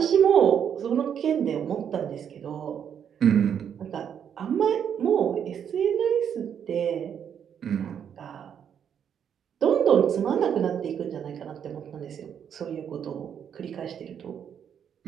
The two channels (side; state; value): left; quieter; 8.4 dB